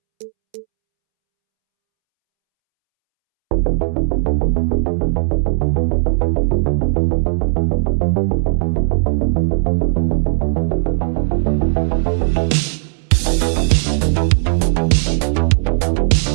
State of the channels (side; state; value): left; silent; 69 dB below the other